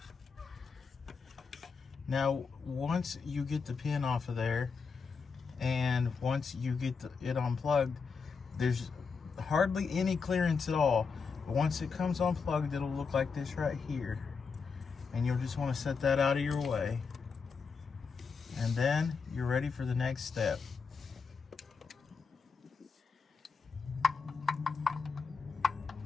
Now, once you get the pin off of there, and once you get it unplugged, there's hardly any clearance at all. But once it comes unplugged, it'll look like this right here. And you'll just want to set that out of your way. And then you're ready for the next step.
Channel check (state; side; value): quieter; right; 5.3 dB